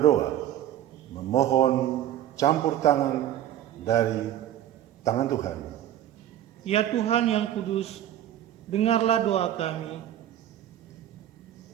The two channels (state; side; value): quieter; left; 11.8 dB